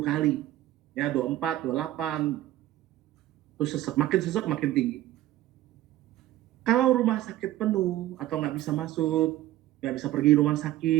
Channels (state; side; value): quieter; left; 14.8 dB